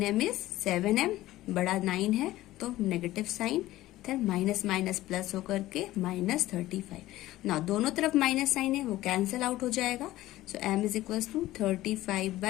is 7m, बड़ा 9 है तो नेगेटिव साइन, इधर माइनस माइनस प्लस होकर के माइनस 35। ना दोनों तरफ माइनस साइन है, वो कैंसिल आउट हो जाएगा। So m is equals to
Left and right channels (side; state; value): right; quieter; 16.1 dB